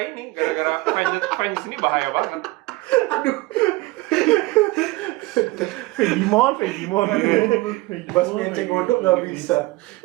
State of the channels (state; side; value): quieter; left; 21.4 dB